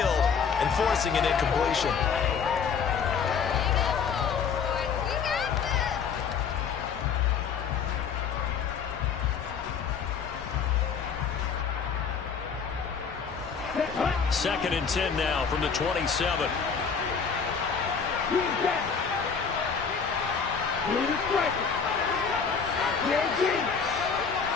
and forcing an incompletion. Second and 10 now from the 27.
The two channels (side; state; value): right; quieter; 6.2 dB